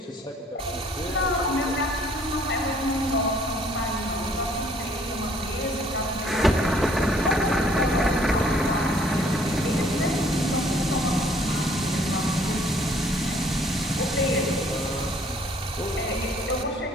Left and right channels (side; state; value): both; normal; correlation 0.60